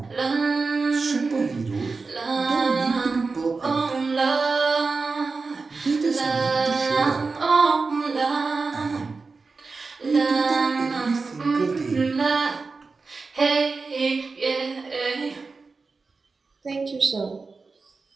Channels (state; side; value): quieter; left; 4.2 dB